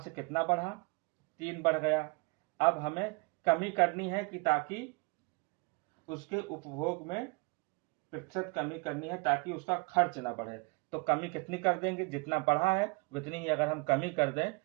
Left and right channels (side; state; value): left; quieter; 29.1 dB